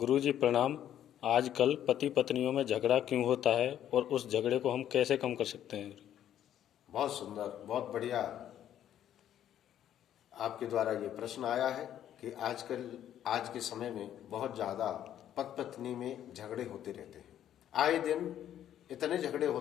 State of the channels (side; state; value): right; quieter; 10.9 dB